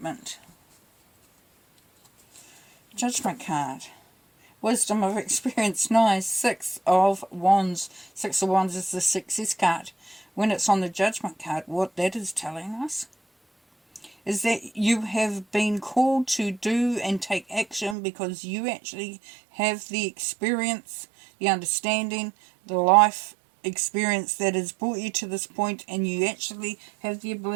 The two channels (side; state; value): left; drops out; at 17.9 s